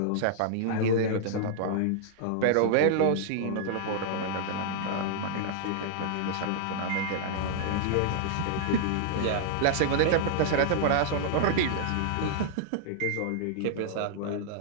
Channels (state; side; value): different; both; correlation -0.01